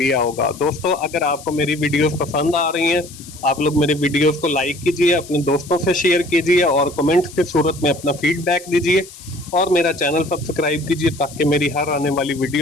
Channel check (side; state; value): left; noise; hiss, 18 dB below the sound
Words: होगा। दोस्तों अगर आपको मेरी वीडियोस पसंद आ रही हैं, आप लोग मेरे वीडियोस को लाइक कीजिए, अपने दोस्तों से शेयर कीजिए और कमेंट की सूरत में अपना फीडबैक दीजिए और मेरा चैनल सब्सक्राइब कीजिए ताकि मेरी हर आने वाली